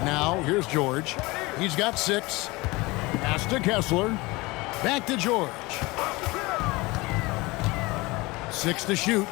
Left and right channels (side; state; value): right; quieter; 22.8 dB